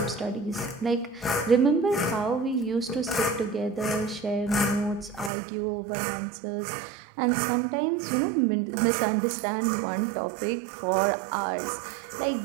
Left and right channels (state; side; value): drops out; left; at 5.3 s